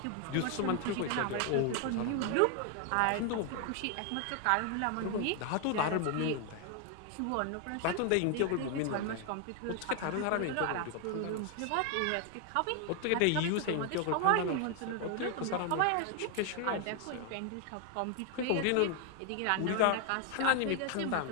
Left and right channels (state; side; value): different; both; correlation 0.00